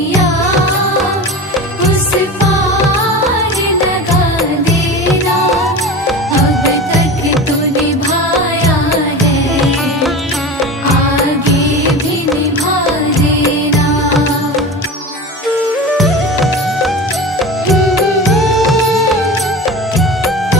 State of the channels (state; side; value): normal; both; correlation 0.30